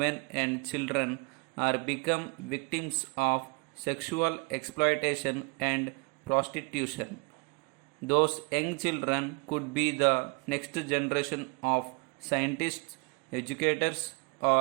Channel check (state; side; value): quieter; left; 30.9 dB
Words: and children are become victims of sexual exploitation and prostitution. Those young children could be the next generation of scientists, educators,